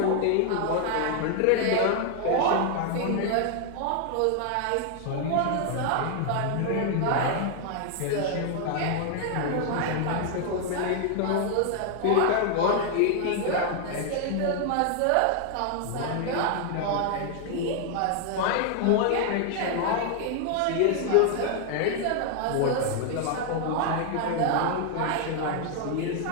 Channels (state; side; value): different; both; correlation 0.00